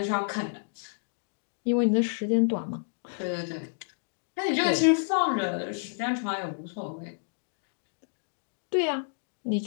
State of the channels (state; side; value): silent; right; digital silence